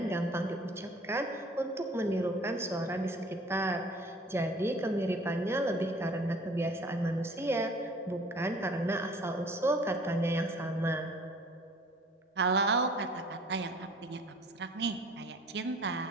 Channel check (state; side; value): normal; both; correlation 0.51